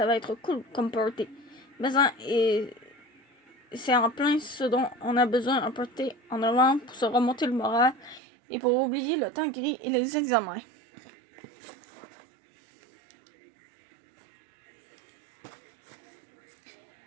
va être cool comme party. Mais c'est en plein ce dont on a besoin, un party en novembre pour se remonter le moral et pour oublier le temps gris et les examens.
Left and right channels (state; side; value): drops out; left; at 8.2 s